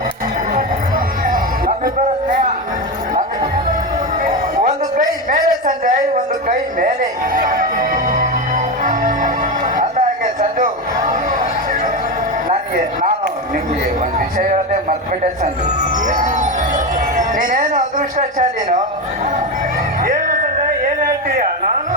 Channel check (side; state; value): both; normal; correlation 0.16